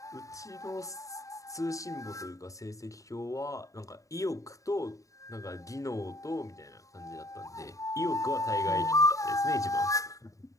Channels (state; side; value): late; right; 0.16 ms